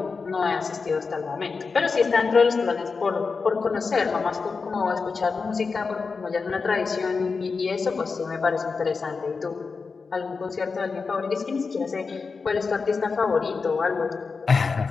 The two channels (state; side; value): quieter; right; 4.7 dB